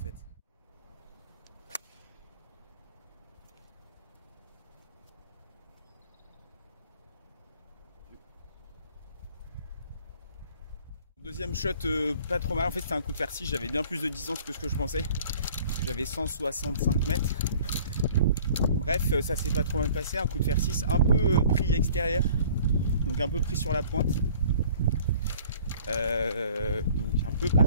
Deuxième shot pas trop mal, en fait c'était un coup de fer 6, j'avais bien plus de distance que ce que je pensais. J'avais 165 mètres. Bref, ça s'est pas trop mal passé, un coup de fer 6, un peu pris extérieur, donc un peu pris sur la pointe. Donc un peu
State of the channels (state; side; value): inverted; both; correlation -0.51